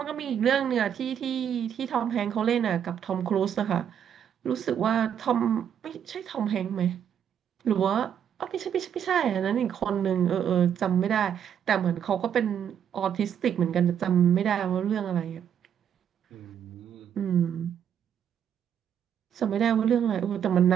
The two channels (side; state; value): left; quieter; 8.8 dB